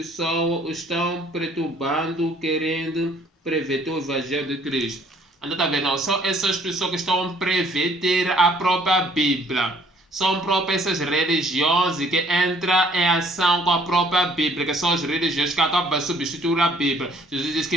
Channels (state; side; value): normal; both; correlation 0.59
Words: estão perturbando, querendo prever o evangelho de Cristo. Então está vendo? São essas pessoas que estão a prever a própria Bíblia. São próprias essas religiões que entram em ação com a própria Bíblia, que são as religiões que acabam de substituir a Bíblia. Jesus diz